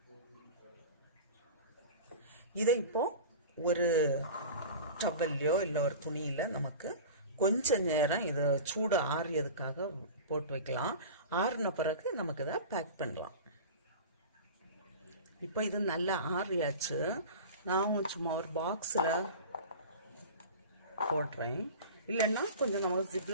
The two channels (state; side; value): inverted; both; correlation -0.33